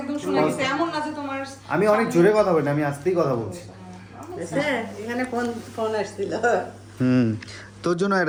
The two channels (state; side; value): identical; both; correlation 1.00